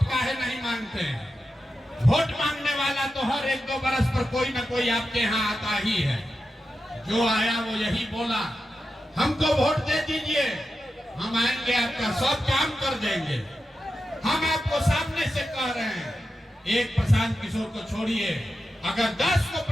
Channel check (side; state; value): both; normal; correlation 0.90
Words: काहे नहीं मांगते हैं? वोट मांगने वाला तो हर 1-2 बरस पर कोई ना कोई आपके यहाँ आता ही है। जो आया वो यही बोला, हमको वोट दे दीजिए, हम आएंगे आपका सब काम कर देंगे। हम आपको सामने से कह रहे हैं, एक प्रशांत किशोर को छोड़िए, अगर 10 को